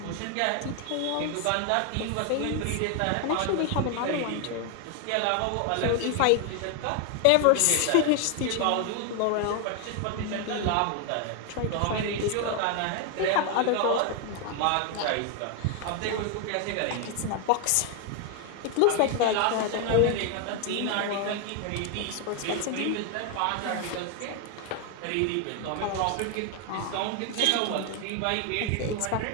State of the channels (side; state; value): both; different; correlation 0.00